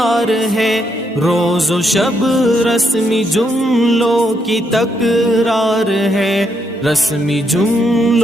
ہے، روز و شب رسمی جملوں کی تکرار ہے، رسمی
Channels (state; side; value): normal; both; correlation 0.77